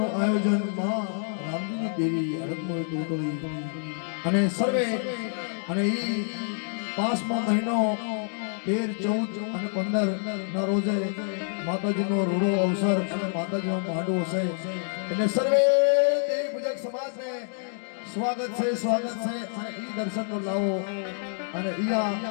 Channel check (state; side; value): silent; right; digital silence